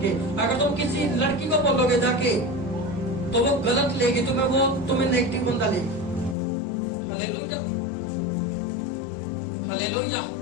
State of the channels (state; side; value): drops out; right; at 6.4 s